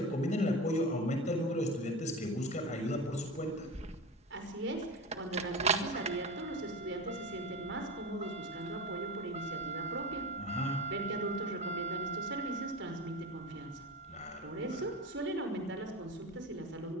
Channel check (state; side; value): normal; both; correlation 0.27